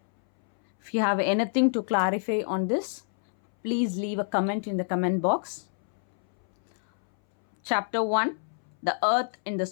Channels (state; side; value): silent; right; 60 dB below the other